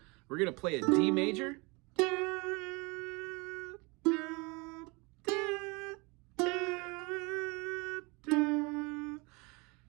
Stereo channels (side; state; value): left; quieter; 27.5 dB